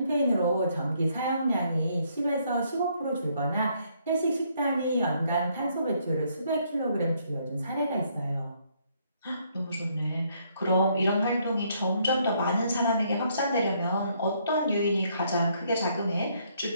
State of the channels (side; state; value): both; inverted; correlation -0.70